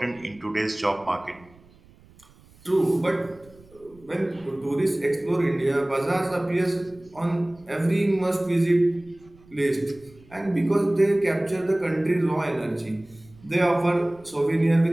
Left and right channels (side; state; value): right; noise; rumble, 26 dB below the sound